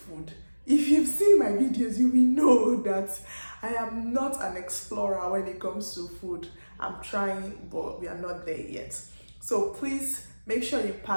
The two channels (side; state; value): both; inverted; correlation -1.00